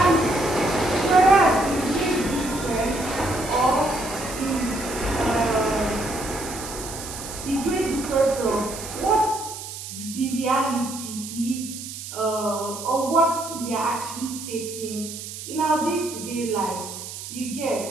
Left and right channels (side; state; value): right; noise; hiss, 10 dB below the sound